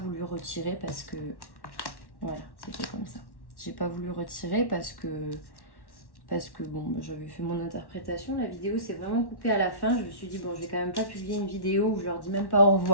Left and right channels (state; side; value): late; right; 1.1 ms